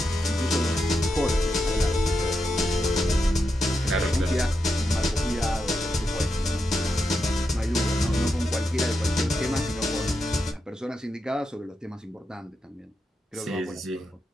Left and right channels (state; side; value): normal; both; correlation 0.86